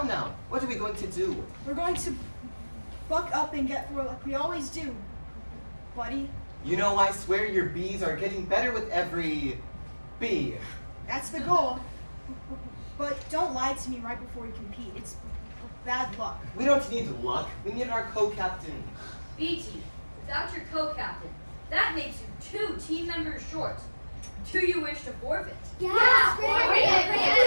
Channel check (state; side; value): inverted; both; correlation -1.00